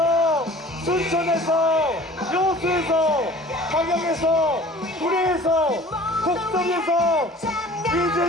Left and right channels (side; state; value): both; normal; correlation 0.46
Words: 순천에서, 여수에서, 광양에서, 구례에서, 곡성에서